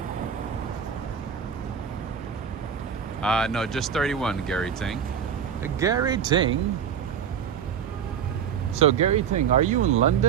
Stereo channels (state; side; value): quieter; left; 8.0 dB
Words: No, just 31, Gary Ting. Gary Ting. So Gary Ting, are you in